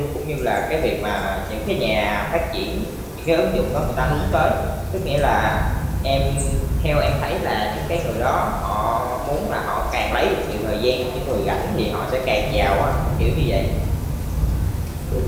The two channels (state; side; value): identical; both; correlation 1.00